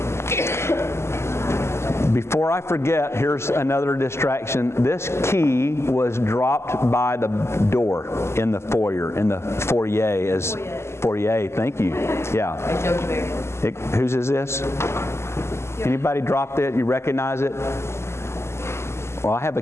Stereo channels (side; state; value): right; late; 0.13 ms